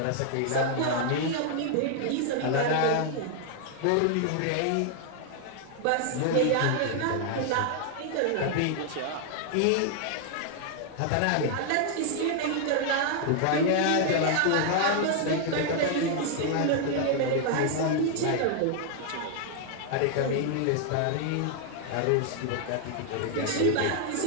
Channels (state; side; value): different; both; correlation 0.00